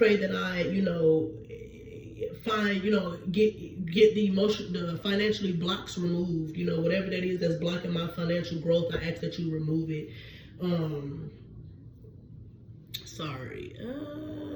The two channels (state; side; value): identical; both; correlation 1.00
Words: that I, find, get the financially blocks removed, whatever that is that's blocking my financial growth, I ask that you remove it. Sorry.